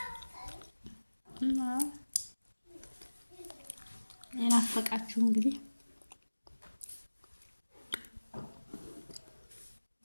እና የናፈቃችሁ እንግዲህ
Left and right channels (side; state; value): both; inverted; correlation -1.00